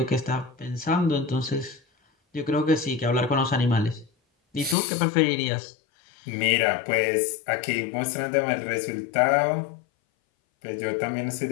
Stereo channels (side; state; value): right; drops out; at 4.8 s